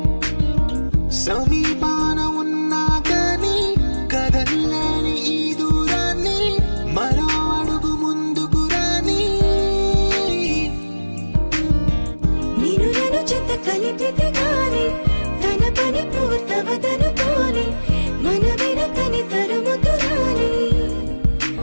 సమీపాన ఉన్నా కానీ కదల్లేని ఈ దూరాన్ని మరో అడుగు ముందుకు రాని నిన్ను నన్ను చెత్త కలిపితే గాని తన పని పూర్తవదనుకోని మన వెనకని తరుముతురాని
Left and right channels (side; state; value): both; inverted; correlation -1.00